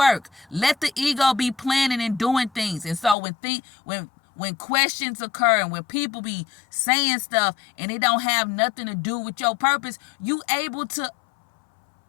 Let the ego be planning and doing things. And so when questions occur and when people be saying stuff and it don't have nothing to do with your purpose, you able to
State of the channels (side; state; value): right; drops out; at 3.2 s